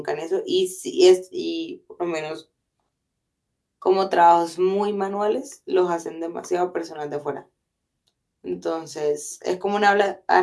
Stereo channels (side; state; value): both; identical; correlation 1.00